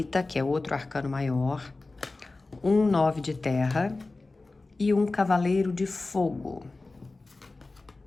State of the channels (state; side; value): quieter; right; 3.3 dB